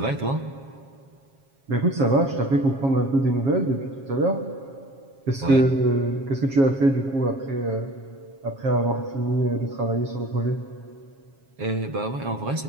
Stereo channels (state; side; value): late; left; 7.4 ms